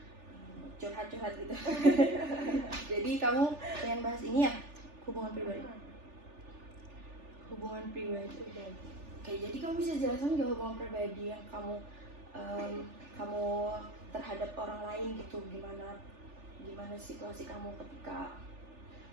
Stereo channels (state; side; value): late; left; 3.4 ms